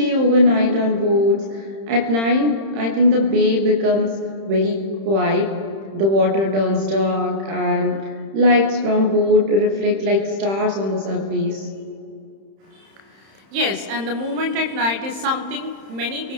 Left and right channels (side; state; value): left; late; 31 ms